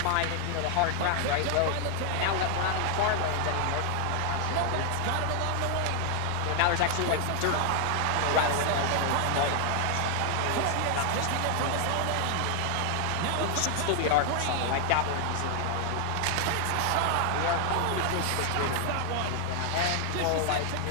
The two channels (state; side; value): different; both; correlation 0.00